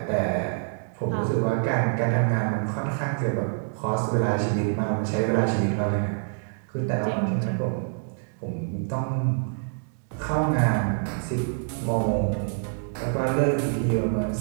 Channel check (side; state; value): left; silent; digital silence